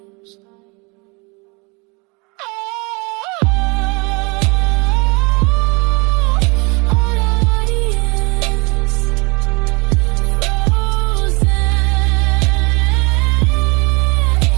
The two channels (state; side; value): quieter; left; 28.9 dB